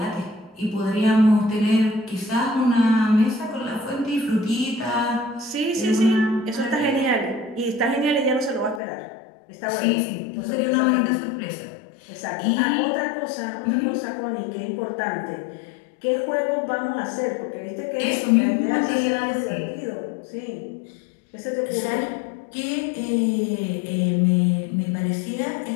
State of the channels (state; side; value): drops out; right; at 8.8 s